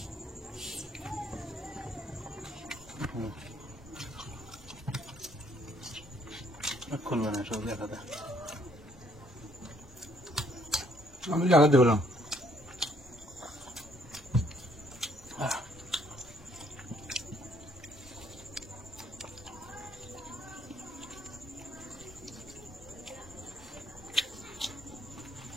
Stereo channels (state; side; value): normal; both; correlation 0.66